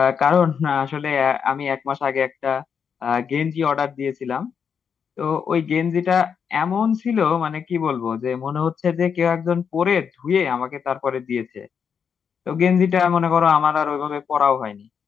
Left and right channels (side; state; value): right; quieter; 6.9 dB